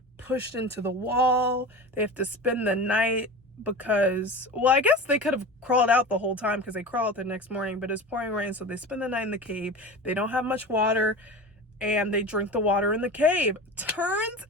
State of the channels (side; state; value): both; normal; correlation 0.31